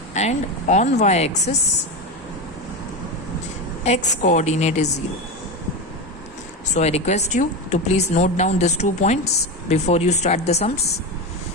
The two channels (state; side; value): normal; both; correlation 0.18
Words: And on y-axis x coordinate is 0. So I request you to please note down these 2 points before you start the sums.